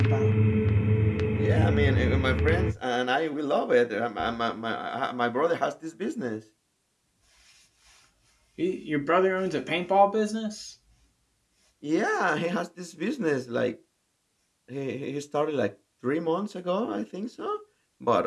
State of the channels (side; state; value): both; identical; correlation 1.00